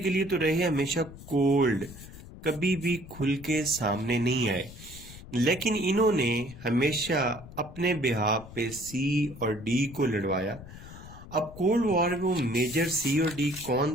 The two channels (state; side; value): noise; left; rumble, 16 dB below the sound